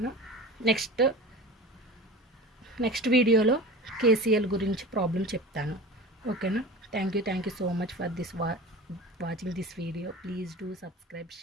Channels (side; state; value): both; normal; correlation 0.36